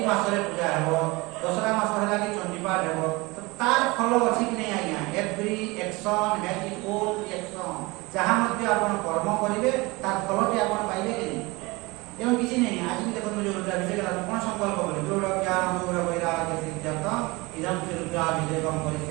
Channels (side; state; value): left; quieter; 23.9 dB